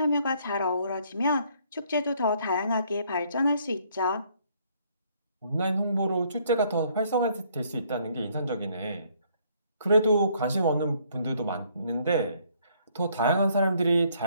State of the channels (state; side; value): inverted; both; correlation -0.66